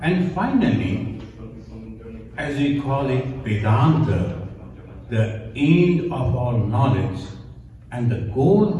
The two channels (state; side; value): identical; both; correlation 1.00